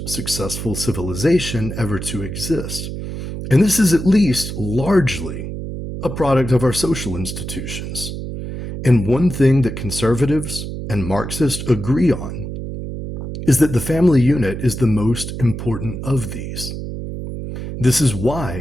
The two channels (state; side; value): noise; right; hum, 7 dB below the sound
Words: successful civilization ever to exist. And this is at least largely a product of our social institutions. And one thing that conservatives and Marxists agree on is that the family unit is the most important of these. This is